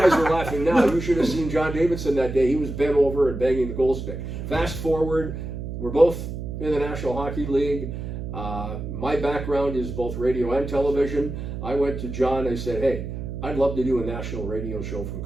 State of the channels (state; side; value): noise; right; hum, 6 dB below the sound